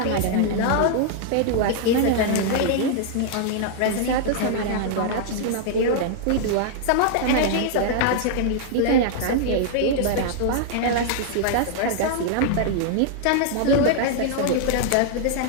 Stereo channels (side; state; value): both; different; correlation -0.01